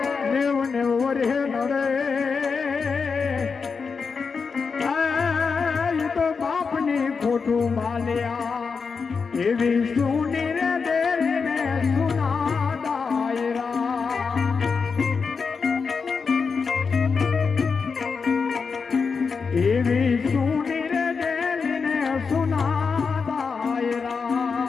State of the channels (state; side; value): quieter; right; 5.3 dB